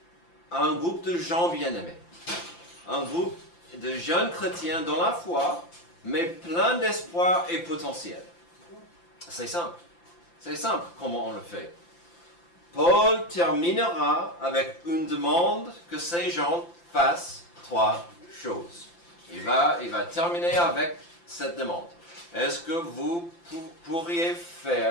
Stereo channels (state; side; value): late; right; 5.8 ms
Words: à un groupe de gens bien-aimés? Un groupe de jeunes chrétiens dans la foi, mais plein d'espoir et potentiel. C'est simple. C'est simple comment on le fait. Paul terminera avec une demande que ces gens fassent 3 choses. Il va terminer avec cette demande. Est-ce que vous pourriez